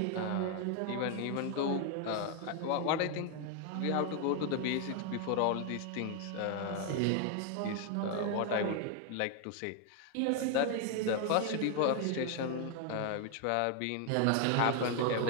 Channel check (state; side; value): different; both; correlation 0.01